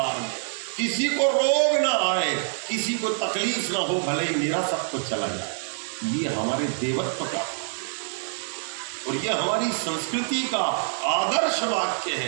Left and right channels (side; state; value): left; silent; digital silence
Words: में, किसी को रोग ना आए, किसी को तकलीफ ना हो, भले ही मेरा सब कुछ चला जाए। ये हमारे देवत्व का और ये हमारी संस्कृति का आदर्श वाक्य